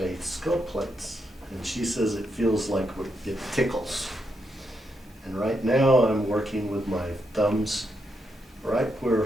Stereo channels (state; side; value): normal; both; correlation 0.81